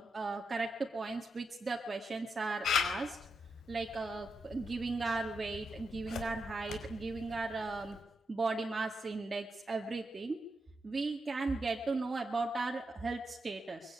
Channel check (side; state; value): both; normal; correlation 0.85